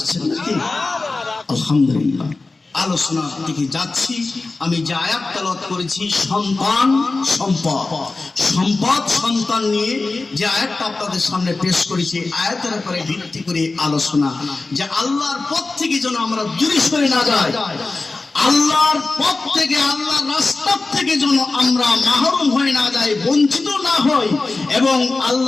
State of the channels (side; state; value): right; quieter; 3.5 dB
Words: নাকি? আলহামদুলিল্লাহ, আলোচনার দিকে যাচ্ছি। আমি যে আয়াত তেলাওয়াত করেছি, সন্তান সম্পদ, সম্পদ সন্তান নিয়ে যে আয়াতটা আপনাদের সামনে পেশ করেছি, আয়াতের উপরে ভিত্তি করে আলোচনা, যে আল্লাহর পথ থেকে যেন আমরা দূরে সরে না যাই, আল্লাহর পথ থেকে, আল্লাহর রাস্তা থেকে যেন আমরা মাহরুম হয়ে না যাই, বঞ্চিত না হই, এবং